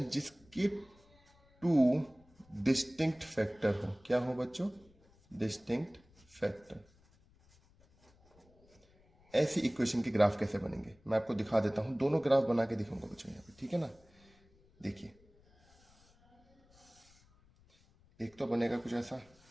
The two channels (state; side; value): noise; left; rumble, 30 dB below the sound